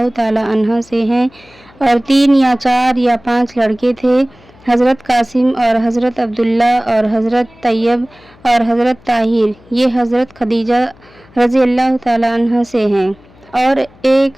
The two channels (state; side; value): noise; left; hum, 27 dB below the sound